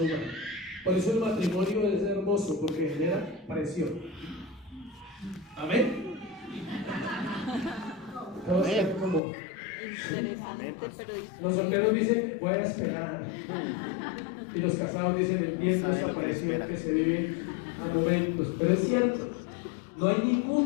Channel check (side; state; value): right; drops out; at 9.2 s